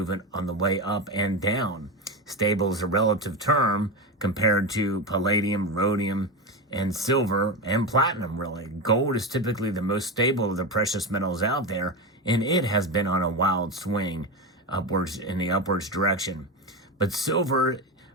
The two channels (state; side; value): normal; both; correlation 0.18